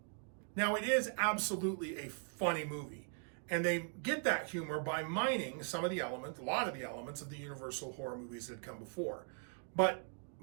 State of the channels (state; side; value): silent; left; 51 dB below the other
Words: Now, it is absolutely a funny movie, and they get that humor by mining some of the elements, a lot of the elements of the Universal horror movies that had come before. But